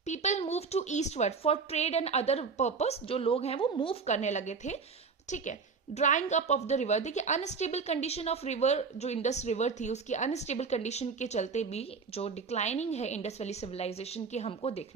People move to eastward for trade and other purpose, जो लोग हैं वो मूव करने लगे थे। ठीक है, drawing up of the river. देखिए, अनस्टेबल कंडीशन ऑफ रिवर, जो इंडस रिवर थी उसकी अनस्टेबल कंडीशन के चलते भी जो डिक्लाइनिंग है इंडस वैली सिविलाइजेशन की हमको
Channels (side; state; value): left; quieter; 5.1 dB